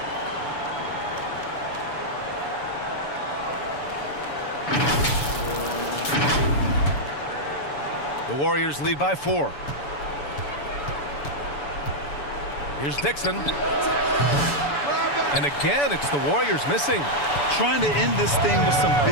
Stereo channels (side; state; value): right; late; 7.0 ms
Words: The Warriors lead by 4. Here's Dixon. And again, it's the Warriors missing. Trying to end this thing with some